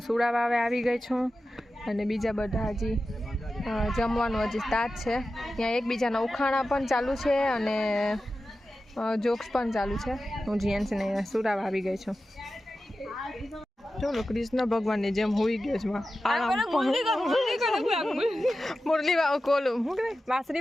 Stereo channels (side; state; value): both; normal; correlation 0.93